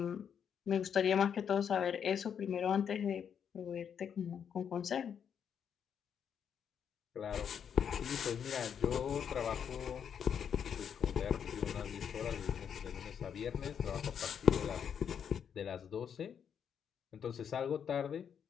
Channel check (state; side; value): quieter; right; 7.9 dB